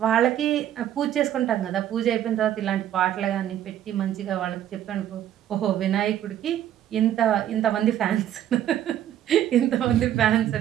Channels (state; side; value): quieter; left; 11.3 dB